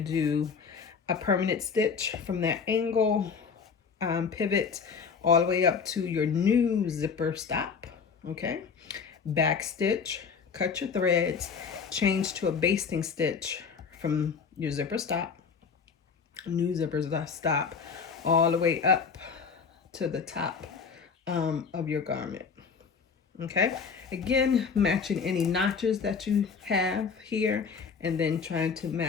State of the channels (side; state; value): right; quieter; 5.8 dB